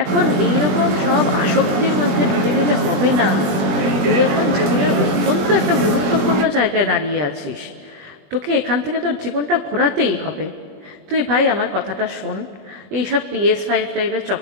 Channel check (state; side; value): late; left; 21 ms